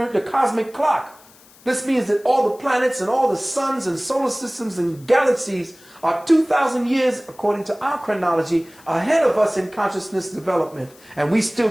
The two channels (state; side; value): noise; left; hiss, 26 dB below the sound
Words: cosmic clock. This means that all the planets and all the suns and solar systems and galaxies are 2,000 years, according to our chronology, ahead of us in consciousness development. And we